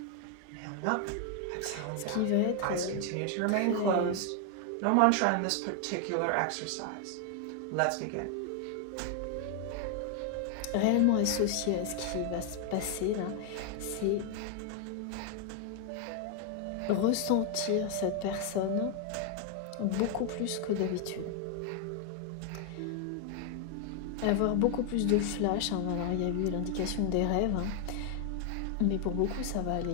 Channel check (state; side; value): different; both; correlation 0.00